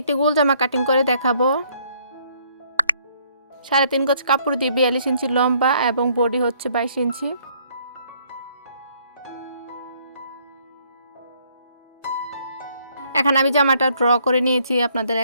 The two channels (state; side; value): inverted; both; correlation -0.65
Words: একটি গোল জামা কাটিং করে দেখাবো। 3.5 গজ কাপড় দিয়ে 42 ইঞ্চি লম্বা এবং বডি হচ্ছে 22 ইঞ্চি। এখানে আমি জামাটা ড্র করে নিয়েছি, আপনাদের